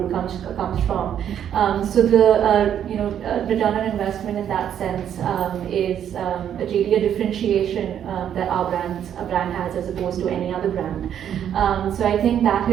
comes from. So the return on investment in that sense is really a differentiation that a brand has as opposed to any other brand. So I think that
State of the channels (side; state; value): left; quieter; 9.6 dB